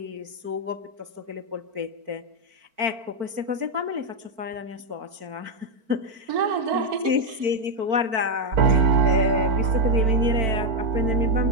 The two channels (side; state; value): left; late; 4.5 ms